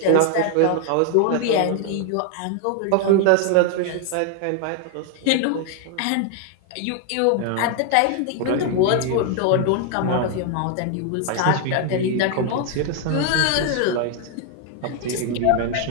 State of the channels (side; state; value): both; different; correlation 0.00